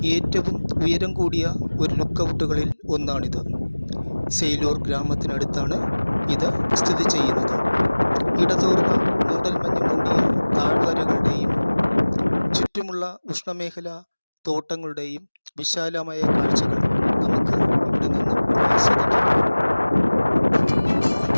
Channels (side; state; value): both; inverted; correlation -1.00